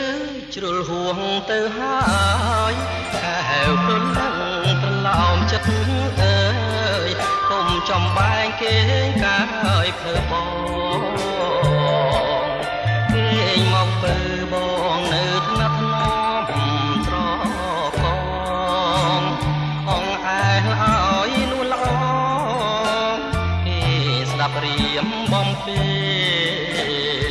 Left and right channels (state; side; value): identical; both; correlation 1.00